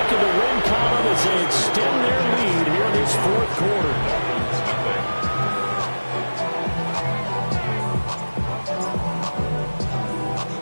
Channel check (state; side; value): inverted; both; correlation -1.00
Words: in the win column as they extend their lead here in this fourth quarter.